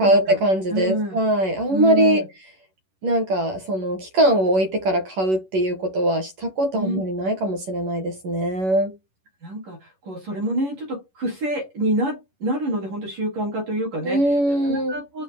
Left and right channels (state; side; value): late; left; 11 ms